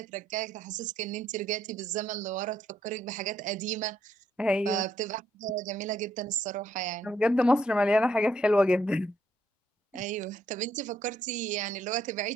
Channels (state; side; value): normal; both; correlation 0.72